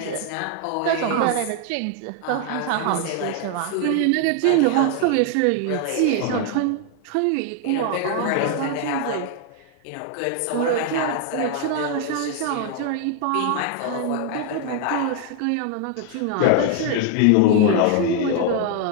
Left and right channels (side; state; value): both; different; correlation 0.00